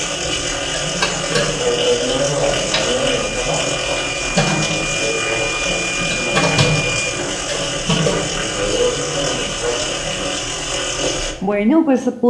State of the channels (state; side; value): identical; both; correlation 1.00